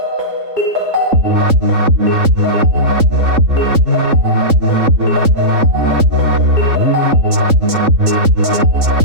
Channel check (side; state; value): left; late; 3.7 ms